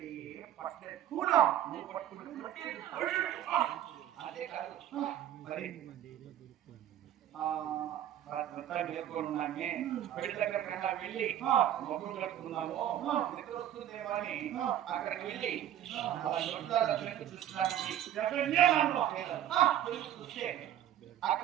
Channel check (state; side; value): quieter; left; 11.5 dB